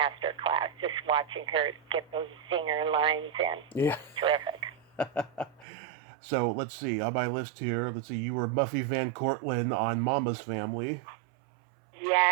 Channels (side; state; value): left; drops out; at 5.7 s